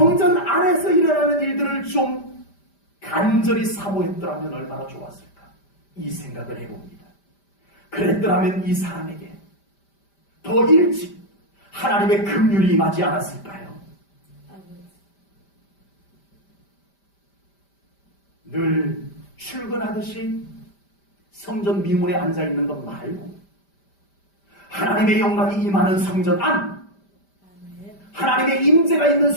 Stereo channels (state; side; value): late; right; 5.1 ms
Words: 안에서 일어나는 일들을 좀 간절히 사모했더라면 얼마나 좋았을까, 이 생각을 해봅니다. 그랬더라면 이 사람에게 더 일찍 하나님의 긍휼이 임하지 않았을까요? 늘 출근하듯이 성전 미문에 앉아있는 것 말고 하나님의 영광이 임하는 성전 안, 하나님의 임재가 있는